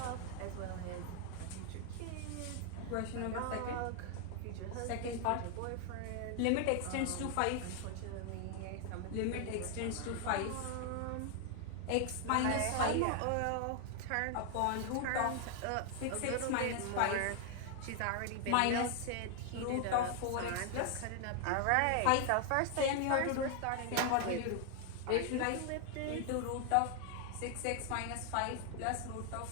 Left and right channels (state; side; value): different; both; correlation 0.00